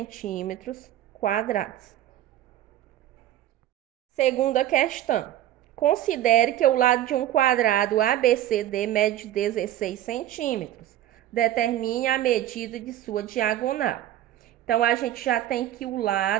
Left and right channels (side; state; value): left; quieter; 12.8 dB